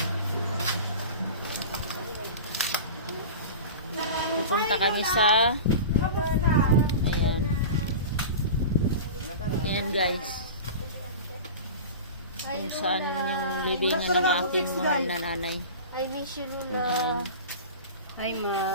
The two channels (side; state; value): both; inverted; correlation -0.32